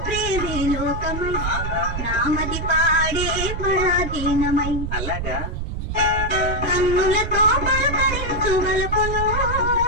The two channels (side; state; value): right; noise; rumble, 4 dB below the sound